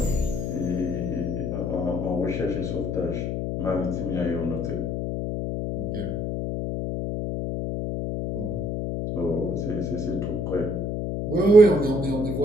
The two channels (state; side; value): noise; left; hum, 2 dB below the sound